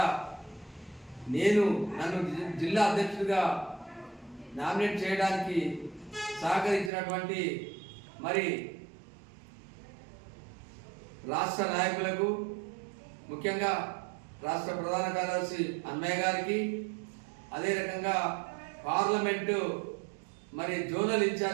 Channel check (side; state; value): left; drops out; at 6.9 s